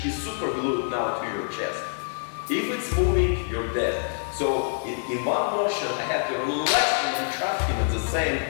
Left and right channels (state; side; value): silent; right; digital silence